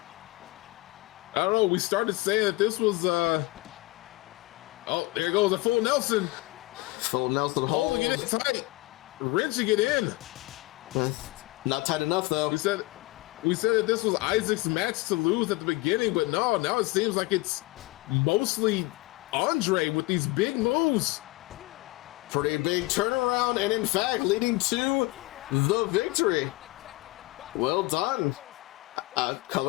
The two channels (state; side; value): quieter; right; 21.9 dB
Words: I don't know. We started saying that this was, oh, there goes a full Nelson. Full Nelson hold. Holding it tight. Wrenching it in. Not tight enough, though. We said that this was Isaac's match to lose at the beginning, but no, now it seems like it's mostly Andre with these big moves. Pretty big turnaround, and in fact, leading to the victory. Well done.